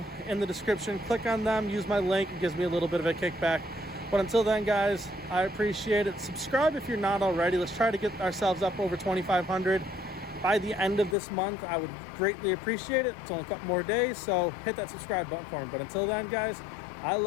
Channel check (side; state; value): right; drops out; at 11.2 s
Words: in the description. Click on them, use my link, it gives me a little bit of a kickback. But until then, guys, I appreciate it. Subscribe if you're not already. Let's try to get ourselves up over 2,500 by the end of this month. I would greatly appreciate it. It's only a couple more days, so hit that subscribe button for me. But until then, guys, I